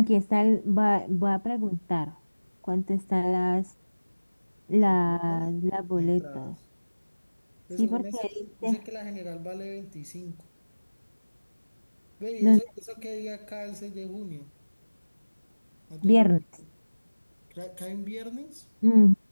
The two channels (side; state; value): both; inverted; correlation -1.00